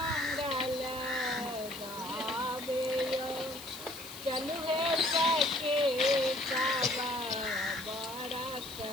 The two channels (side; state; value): left; noise; hiss, 13 dB below the sound